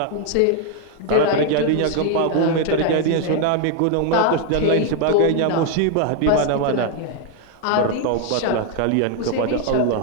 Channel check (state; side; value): different; both; correlation 0.00